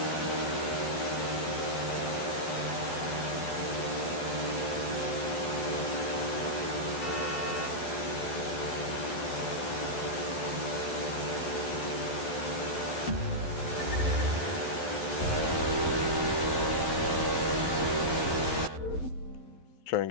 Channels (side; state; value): right; late; 12 ms